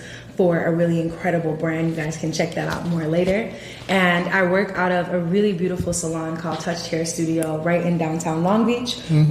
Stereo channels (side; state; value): both; identical; correlation 1.00